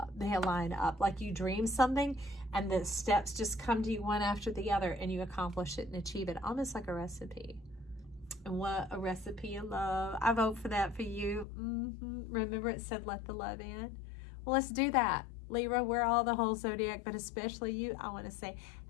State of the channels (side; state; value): right; drops out; at 11.5 s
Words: They align up. Like you dream something and the steps just come to you one after the other and you accomplish it and achieve it. Almost like a recipe. And what a recipe of love. I vote for that for you. Remember it said let the love in? Well, let's do that. Libra, we're all the whole zodiac, but especially you, I want to say